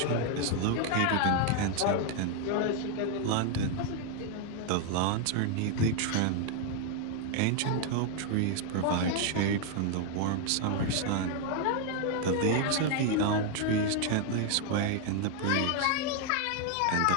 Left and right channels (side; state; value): both; different; correlation 0.00